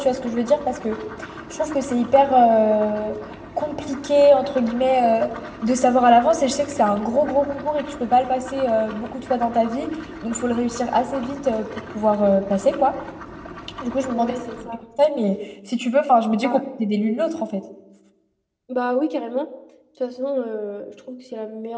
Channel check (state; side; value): identical; both; correlation 1.00